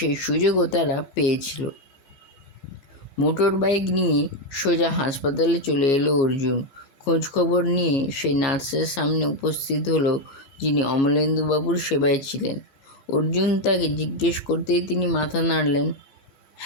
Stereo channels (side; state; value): right; late; 15 ms